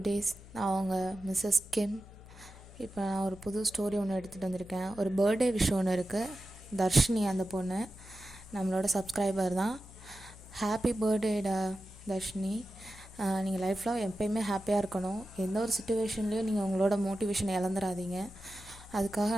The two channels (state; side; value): noise; left; hum, 18 dB below the sound